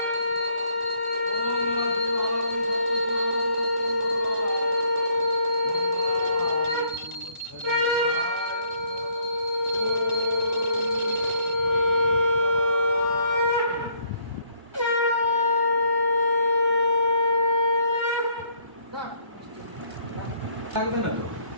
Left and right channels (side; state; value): left; late; 1.0 ms